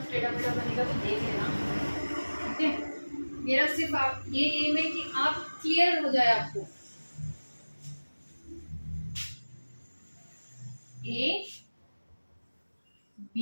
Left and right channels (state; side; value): inverted; both; correlation -1.00